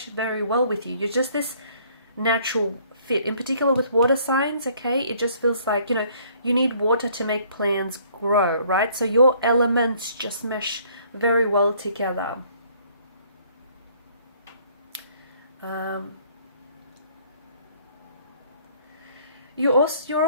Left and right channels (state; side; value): inverted; both; correlation -0.60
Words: well with you. You're just this natural fit. In particular with water signs, okay, it just feels like, you need water to make plants grow, right? So your elements just mesh very well together. You're